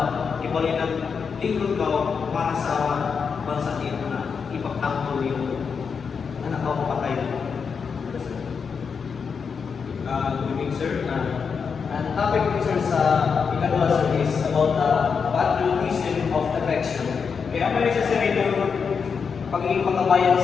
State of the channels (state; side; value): quieter; right; 5.9 dB